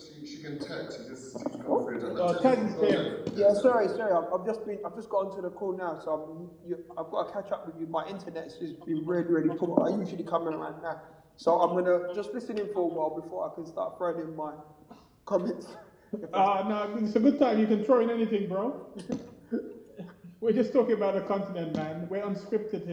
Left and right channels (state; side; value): identical; both; correlation 1.00